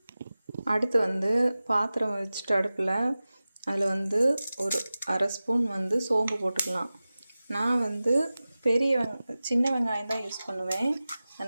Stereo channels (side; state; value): both; inverted; correlation -0.96